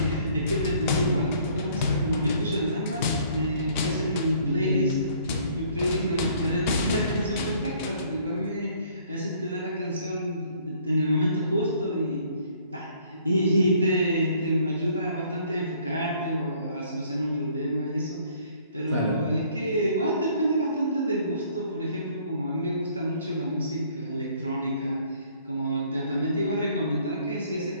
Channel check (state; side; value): inverted; both; correlation -0.60